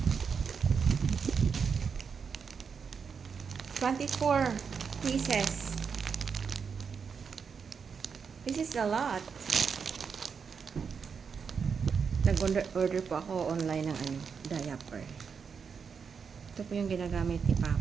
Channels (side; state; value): left; quieter; 6.1 dB